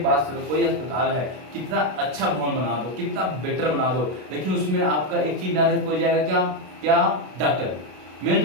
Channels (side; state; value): left; late; 32 ms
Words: बात सुनो, कोई अस्पताल है, कितना अच्छा भवन बना दो, कितना बेटर बना दो, लेकिन उसमें आपका एक चीज ना रहे, कोई जाएगा क्या, क्या, डॉक्टर। मेन